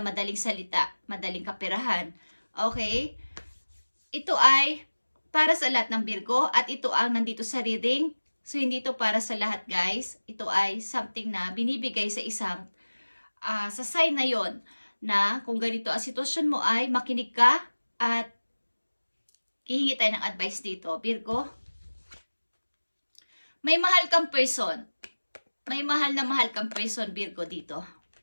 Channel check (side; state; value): both; inverted; correlation -1.00